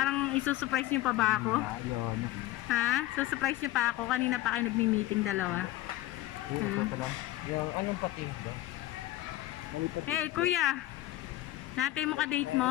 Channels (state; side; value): quieter; right; 15.9 dB